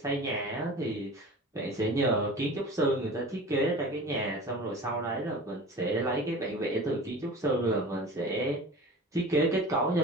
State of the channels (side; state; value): both; normal; correlation 0.38